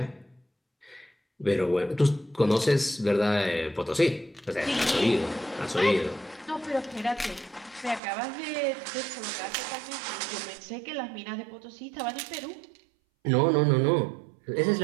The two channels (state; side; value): drops out; left; at 8.0 s